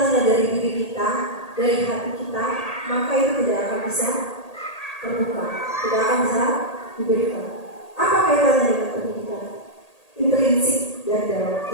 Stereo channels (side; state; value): right; late; 1.8 ms